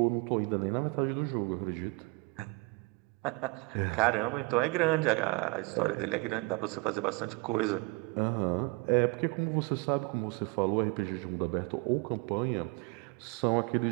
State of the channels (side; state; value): left; quieter; 27.0 dB